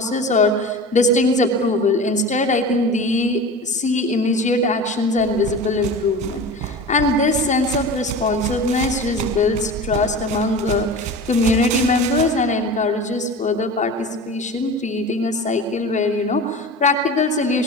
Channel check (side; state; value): both; normal; correlation 0.33